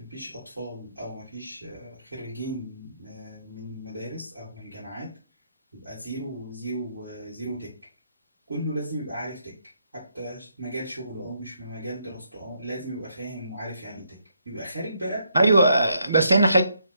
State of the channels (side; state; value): both; inverted; correlation -0.75